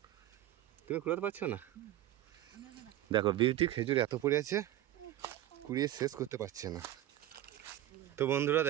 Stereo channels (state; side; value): quieter; left; 13.7 dB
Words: তুমি কুড়াতে পারছো না? দেখো বিউটি খেজুর এত পড়ে আছে, কুড়িয়ে শেষ করতে পারছে না। তো বন্ধুরা